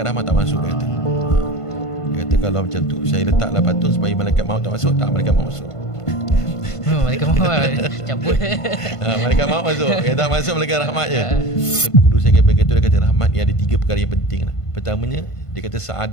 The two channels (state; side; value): late; right; 1.5 ms